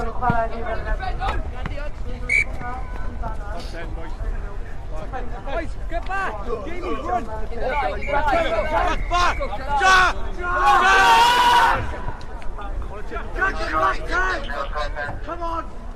Get back! Jamie, run! Back! Jack! Come on!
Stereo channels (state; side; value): identical; both; correlation 1.00